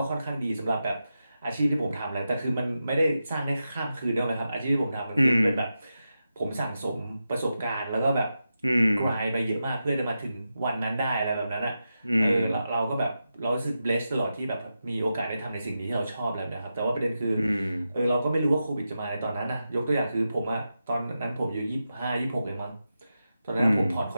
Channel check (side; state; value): both; inverted; correlation -0.89